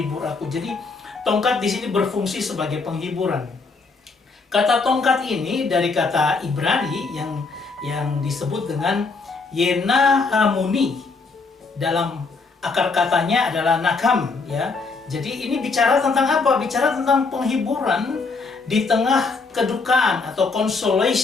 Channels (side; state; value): right; quieter; 4.2 dB